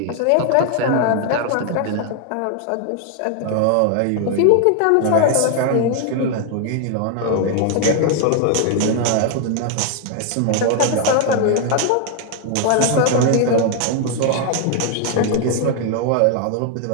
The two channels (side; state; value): both; different; correlation 0.00